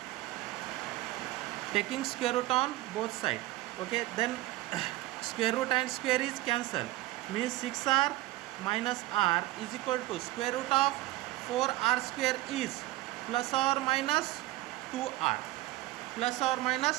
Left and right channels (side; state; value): left; quieter; 17.9 dB